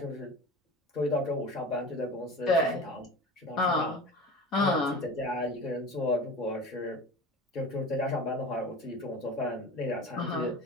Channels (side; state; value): both; normal; correlation 0.34